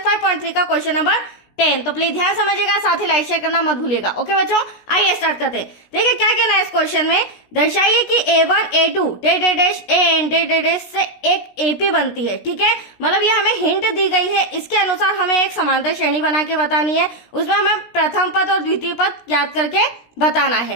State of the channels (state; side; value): late; right; 17 ms